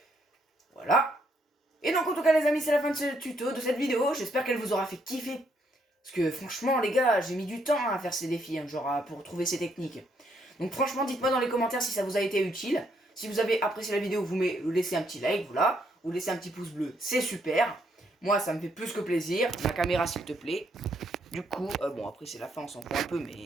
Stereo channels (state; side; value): normal; both; correlation 0.73